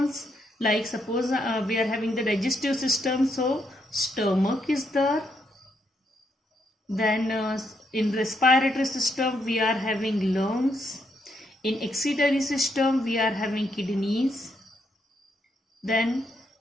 like suppose we are having the digestive system, so stomach is there. Then in respiratory system we are having lungs. In excretory system we are having kidneys. Then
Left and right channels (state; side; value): normal; both; correlation 0.77